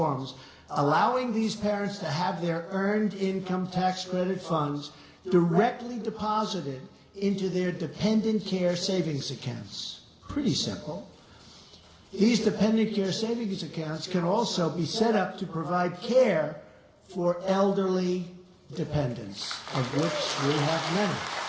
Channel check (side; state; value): both; identical; correlation 1.00